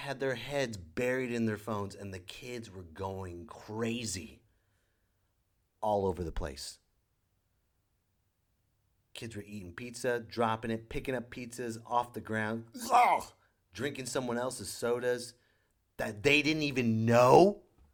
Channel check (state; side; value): identical; both; correlation 1.00